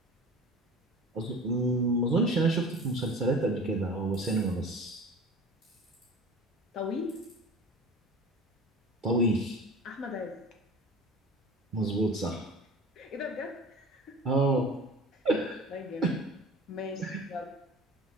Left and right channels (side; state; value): both; normal; correlation 0.38